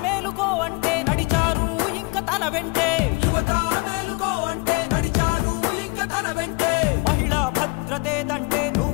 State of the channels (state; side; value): quieter; right; 29.9 dB